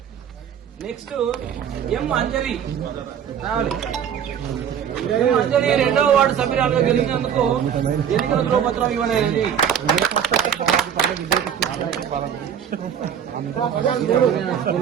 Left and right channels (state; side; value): quieter; left; 8.6 dB